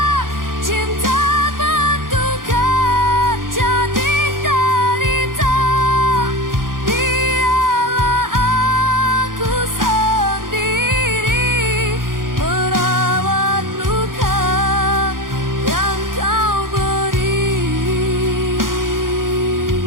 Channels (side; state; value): left; late; 0.90 ms